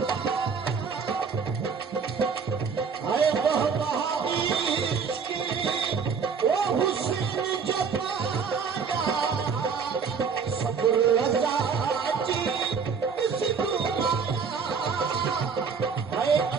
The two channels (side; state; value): left; quieter; 5.8 dB